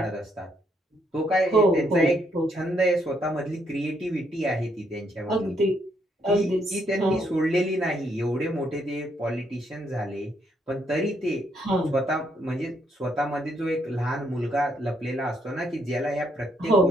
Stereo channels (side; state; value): both; normal; correlation 0.73